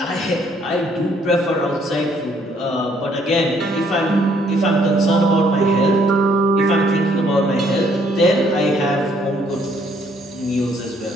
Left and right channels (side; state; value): both; normal; correlation 0.66